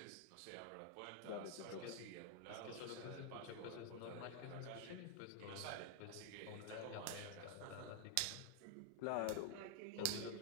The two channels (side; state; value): both; different; correlation 0.00